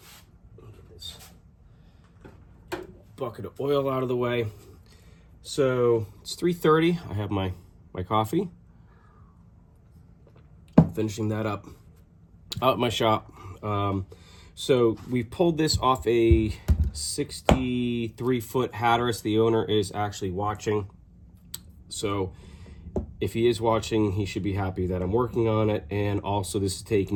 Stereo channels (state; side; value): identical; both; correlation 1.00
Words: Get this bucket of oil out of the way. So it's 3:30. I have my coffee. Finishing that up out at my shop. So we pulled this off a 63-foot Hatteras. The owner is actually watching. So if he is watching, he should be happy that I'm working on it. And also this is